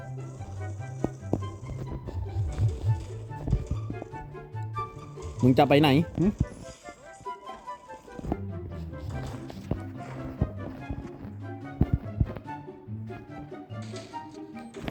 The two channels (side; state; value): both; identical; correlation 1.00